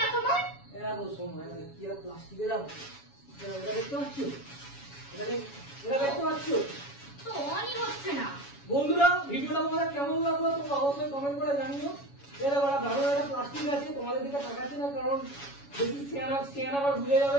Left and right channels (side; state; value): right; late; 7.1 ms